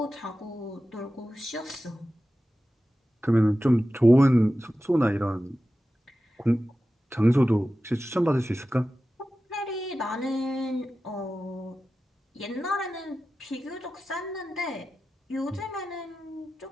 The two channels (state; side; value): normal; both; correlation 0.94